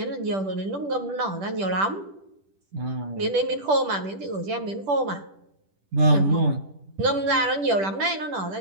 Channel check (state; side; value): late; left; 10 ms